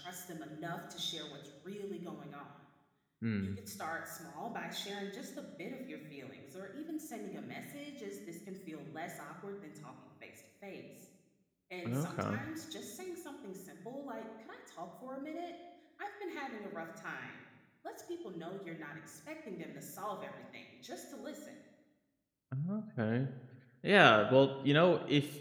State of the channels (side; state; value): both; identical; correlation 1.00